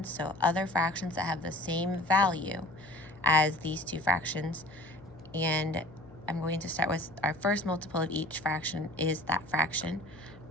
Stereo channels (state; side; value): noise; left; hum, 20 dB below the sound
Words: so other fractions that have the same value as these two fractions. And I'm going to start with our first multiple of each fraction is that fraction.